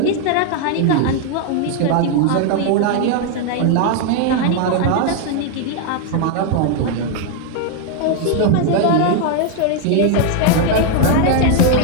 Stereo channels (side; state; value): both; different; correlation 0.00